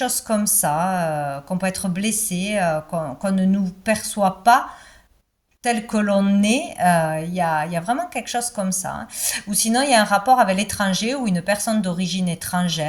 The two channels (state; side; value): identical; both; correlation 1.00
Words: comme ça, qu'on peut être blessé, qu'on ne nous perçoit pas tel que l'on est. Il y a vraiment quelque chose comme ça, hein. Ou sinon, il y a un rapport avec l'étranger ou une personne d'origine